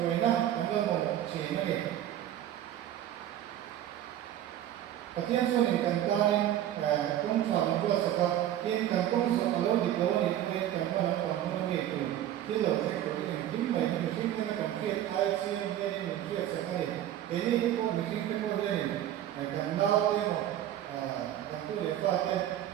rồi na cảm ơn một chỉ nó đi Patien số này cần cái cũng chọn một cái sự thật nhưng cần công sự ở lâu thì lâu thì cái cần có một cái nghề từ cái lời sẽ của cái chính mình mình chính cái cần thiết ai xin cái này mình thiết sẽ cái này cái cô mình chính cái cô này cần đau cái một cần tu để pha cái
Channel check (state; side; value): quieter; left; 12.0 dB